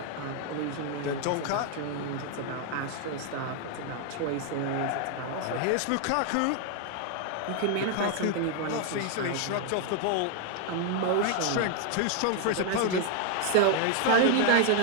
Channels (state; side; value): different; both; correlation 0.00